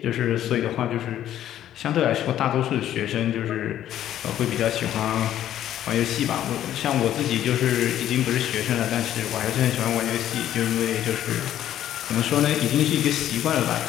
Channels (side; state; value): right; quieter; 11.7 dB